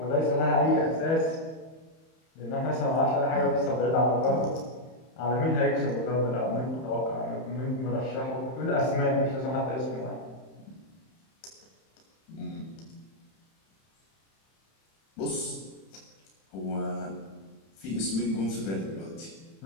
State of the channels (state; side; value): late; right; 31 ms